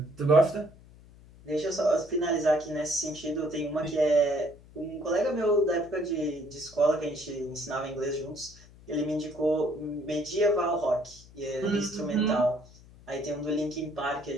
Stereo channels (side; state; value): left; noise; hum, 22 dB below the sound